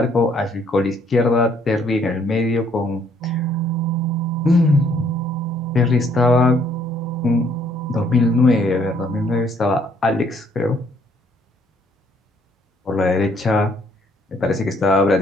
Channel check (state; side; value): normal; both; correlation 0.65